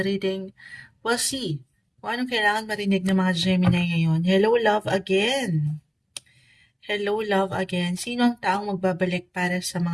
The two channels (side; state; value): both; identical; correlation 1.00